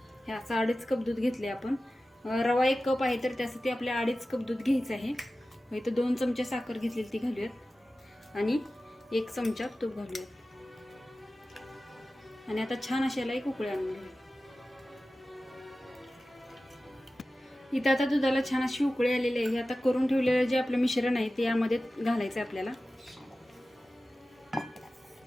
हे असं 2.5 कप दूध घेतले आपण। रवा 1 कप आहे तर त्यासाठी आपल्या 2.5 कप दूध घ्यायचं आहे। इथं 2 चमचे साखर घेतलेली ती घालूयात आणि 1 चमचा तूप घालूयात आणि आता छान अशाला एक उकळी आणून घेऊया। इथं आता दुधाला छान अशी उकळी आलेली आहे। आता करून ठेवलेलं जे आपलं मिश्रण आहे ते यामध्ये घालायचं आहे आपल्याला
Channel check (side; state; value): both; normal; correlation 0.95